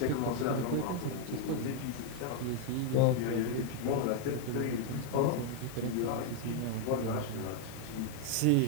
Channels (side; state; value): both; different; correlation 0.00